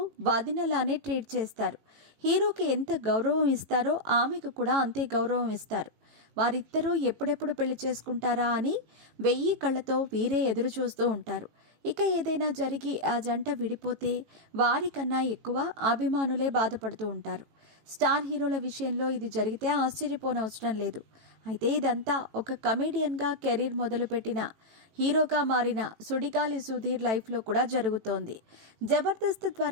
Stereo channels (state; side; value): late; left; 18 ms